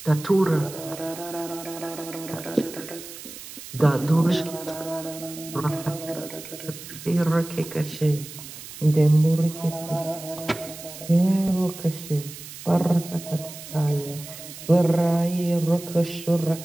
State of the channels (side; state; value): right; noise; hiss, 14 dB below the sound